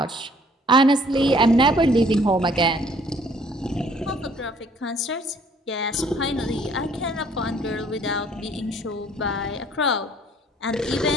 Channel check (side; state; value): both; normal; correlation 0.59